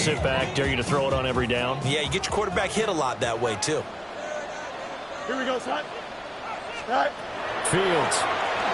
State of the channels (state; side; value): identical; both; correlation 1.00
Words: sit back, dare you to throw it on every down? Yeah, you get your quarterback hit a lot that way, too. Here we go, son. Right. Fields.